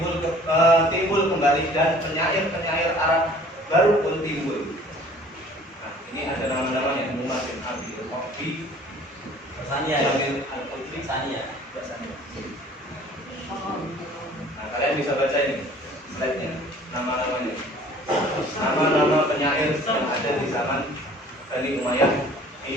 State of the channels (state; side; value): normal; both; correlation 0.51